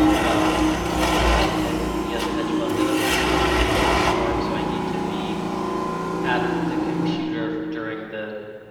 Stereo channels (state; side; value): identical; both; correlation 1.00